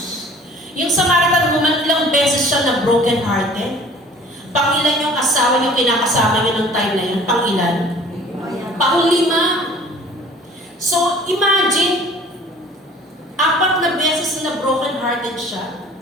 Yung Samaritan woman, ilang beses siya na broken hearted. Pangilan yung asawa yung kinakasama niya ng time na yun? Pangilan? Pang-5. So, imagine, 4 na beses na broken hearted siya.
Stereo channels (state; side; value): normal; both; correlation 0.49